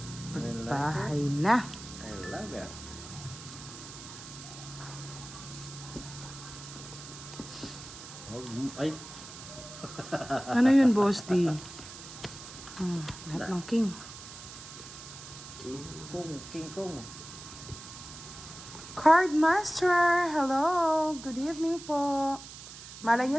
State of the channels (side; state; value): right; noise; hiss, 14 dB below the sound